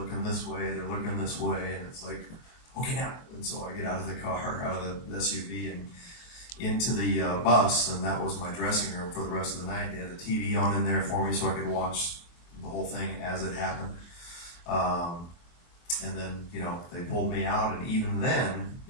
this way, and it's like, okay, now. And so I get out of the car, out of the SUV, and into the bus. And that was my dressing room for the rest of the night. They had the TV on in there for me so I could watch the whole thing as it happened. And then, they pulled me out, and even then,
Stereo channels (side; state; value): right; late; 23 ms